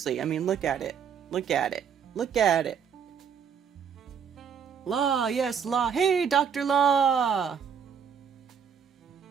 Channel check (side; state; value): left; quieter; 7.3 dB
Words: I mean, look at it. Law, yes, Law. Hey, Dr. Law.